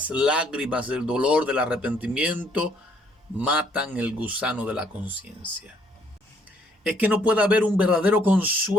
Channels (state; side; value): normal; both; correlation 0.66